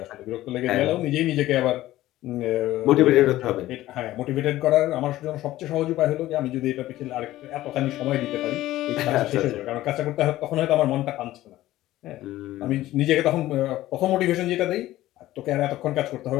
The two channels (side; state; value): right; quieter; 15.5 dB